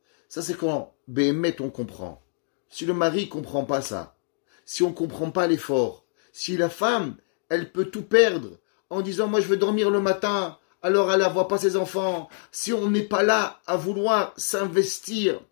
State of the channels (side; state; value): right; silent; digital silence